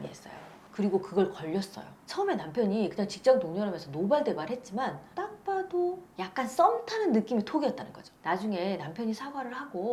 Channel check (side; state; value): both; identical; correlation 1.00